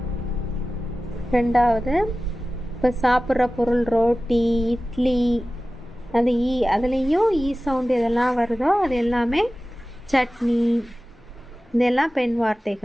ரெண்டாவது, இப்போ சாப்பிட்ற பொருள் ரோட்டி, இட்லி, அந்த அதுலேயும் ஈ சவுண்டு எதெல்லாம் வருதோ அது எல்லாமே சட்னி. இதெல்லாம் பெண்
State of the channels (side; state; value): both; normal; correlation 0.96